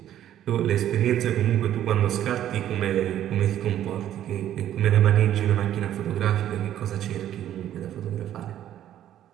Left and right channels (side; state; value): left; quieter; 11.6 dB